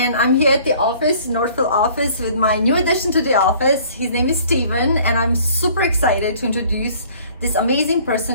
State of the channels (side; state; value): both; inverted; correlation -0.54